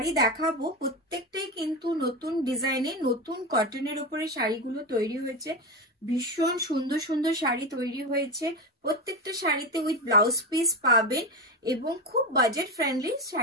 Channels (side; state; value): both; normal; correlation 0.18